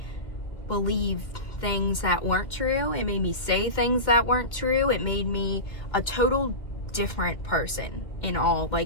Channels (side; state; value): right; late; 2.2 ms